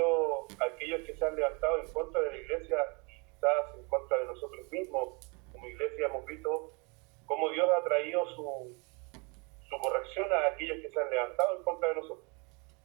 aquellos que se han levantado en contra de la iglesia y quizás en contra de nosotros mismos. Como iglesia hemos visto cómo Dios ha traído su corrección a aquellos que se han levantado en contra de nosotros.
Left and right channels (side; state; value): left; quieter; 31.0 dB